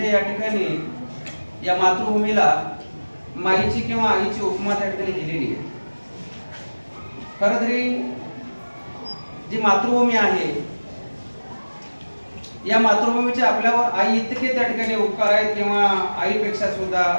या ठिकाणी या मातृभूमीला माईची किंवा आईची उपमा त्या ठिकाणी दिलेली आहे. खरं तरी जी मातृभूमी आहे या मातृभूमीचे आपल्यावर आई इतके त्या ठिकाणी उपकार आहेत किंवा आईपेक्षा सुद्धा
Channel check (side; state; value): both; inverted; correlation -1.00